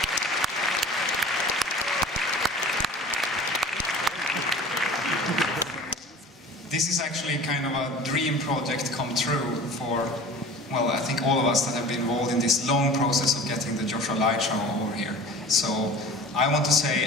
This is actually kind of a dream project come true for, well, I think all of us that have been involved in this long process of getting the Joshua Light Show over here. So I want to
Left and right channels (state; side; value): normal; both; correlation 0.40